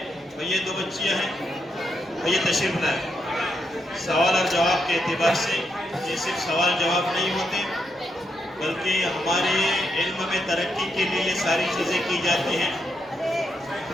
یہ دو بچیاں ہیں، یہ تشریف لائیں۔ سوال اور جواب کے اعتبار سے یہ صرف سوال جواب نہیں ہوتے، بلکہ ہمارے علم میں ترقی کے لیے یہ ساری چیزیں کی جاتی ہیں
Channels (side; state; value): both; normal; correlation 0.81